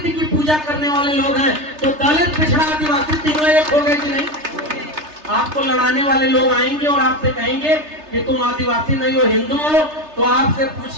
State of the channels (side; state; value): left; late; 3.3 ms